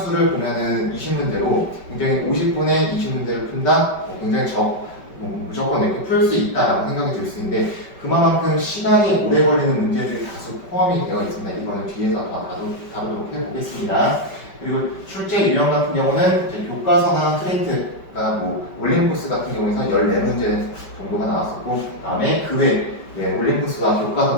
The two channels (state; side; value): late; right; 5.2 ms